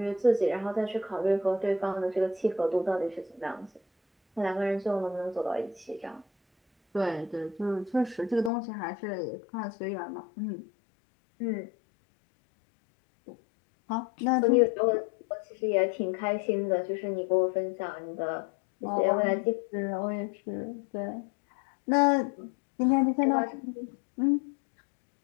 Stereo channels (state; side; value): drops out; right; at 8.5 s